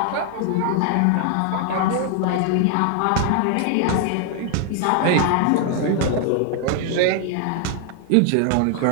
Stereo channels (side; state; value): both; different; correlation 0.00